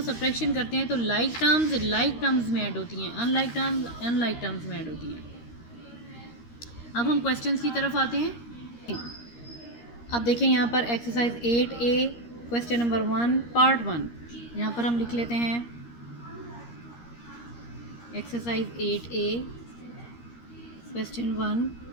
सब्ट्रैक्शन करते हैं तो लाइक टर्म्स लाइक टर्म्स में ऐड होती हैं, अनलाइक टर्म्स अनलाइक टर्म्स में ऐड होती हैं। अब हम क्वेश्चंस की तरफ आते हैं। अब देखें यहाँ पर exercise 8A question number 1 part 1, यहाँ पर हम लिख लेते हैं exercise 8A question 1,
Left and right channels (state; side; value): late; right; 13 ms